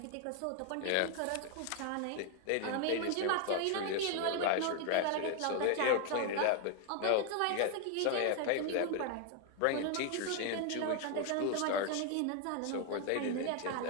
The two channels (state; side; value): different; both; correlation 0.00